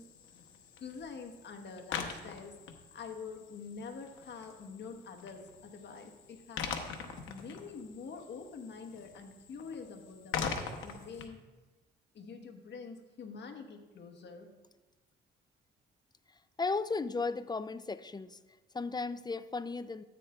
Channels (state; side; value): quieter; right; 4.5 dB